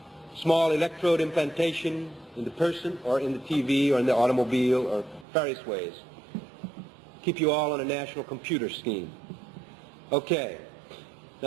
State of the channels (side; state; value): left; drops out; at 5.2 s